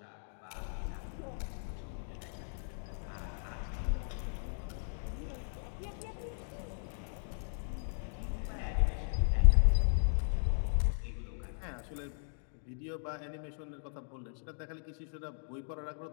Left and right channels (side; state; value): right; silent; digital silence